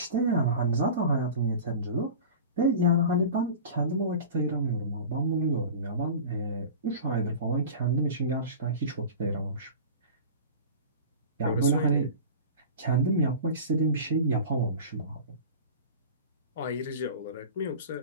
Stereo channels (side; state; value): both; inverted; correlation -0.35